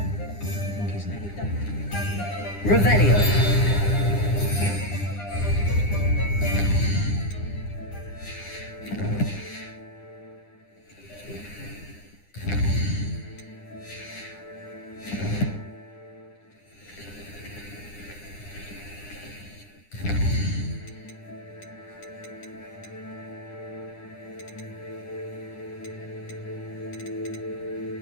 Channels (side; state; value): right; late; 9.9 ms